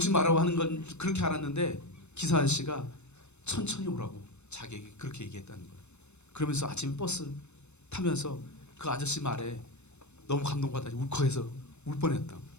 말라고 하는 건 그렇게 알았는데 기사 아저씨가 천천히 오라고 자기에게 그렇게 얘기했다는 거예요. 그러면서 아침에 버스 타면서 그 아저씨 말에 너무 감동받아 울컥해서 울 뻔했다.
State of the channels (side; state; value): right; late; 0.82 ms